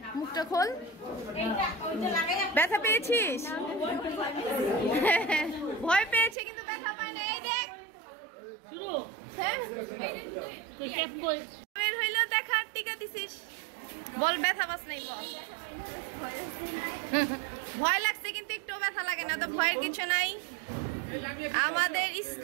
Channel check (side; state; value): left; drops out; at 6.4 s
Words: মুখটা খোল। ব্যথা পেয়েছিস? ভয় পেয়েছে কিন্তু ব্যথা পায় না। এই দেখ বের হইলো, দেখা টিকা দিছিস। বল ব্যথা পাস নাই? বল। ভয় লাগছে কিন্তু একটু ব্যথা লাগে না তো, ভয়ের কিছু নাই। আমাদের